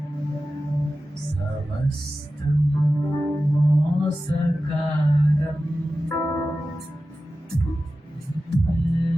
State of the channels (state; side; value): normal; both; correlation 0.94